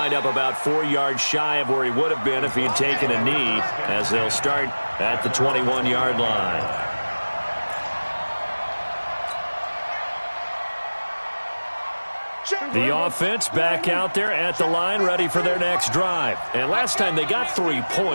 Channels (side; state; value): both; inverted; correlation -1.00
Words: up about 4 yards shy of where he would have been if he had taken a knee, as they'll start at the 21-yard line. The offense back out there at the line, ready for their next drive. And last time they got 3